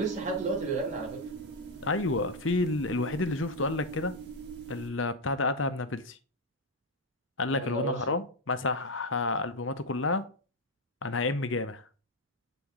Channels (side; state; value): both; normal; correlation 0.03